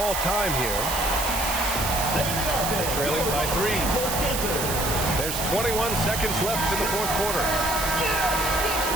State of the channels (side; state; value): right; noise; hiss, 3 dB below the sound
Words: time here. Trailing by 3. There's 21 seconds left in the fourth quarter.